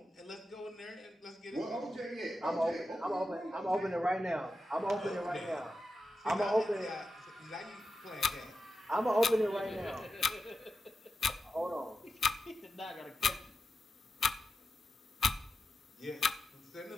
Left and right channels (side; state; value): both; normal; correlation 0.90